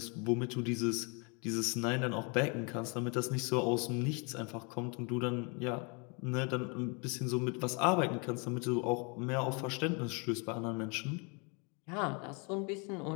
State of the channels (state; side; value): quieter; right; 33.6 dB